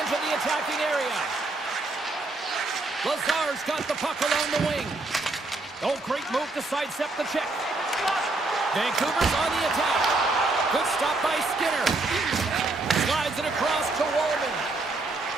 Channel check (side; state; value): left; quieter; 3.2 dB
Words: enter the attacking area. Lazar's got the puck along the wing. Oh, great move to sidestep the check. Vancouver's on the attack. Good stop by Skinner. Slides it across to Wallman.